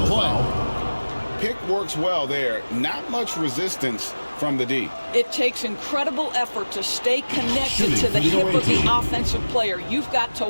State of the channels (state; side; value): inverted; both; correlation -1.00